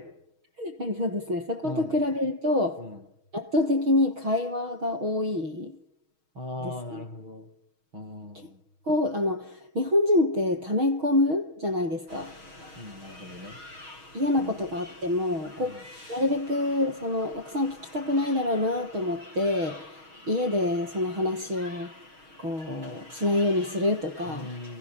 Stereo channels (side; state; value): left; late; 6.3 ms